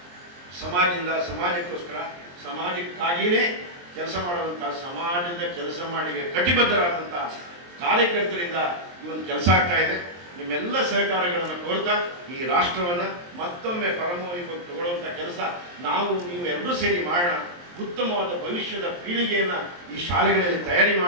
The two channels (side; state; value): left; late; 23 ms